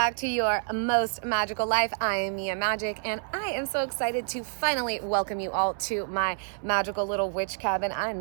to your most magical life. I am Mia Magic, and I am so excited to finally welcome you all to my magical little witch cabin. I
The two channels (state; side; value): silent; left; 59 dB below the other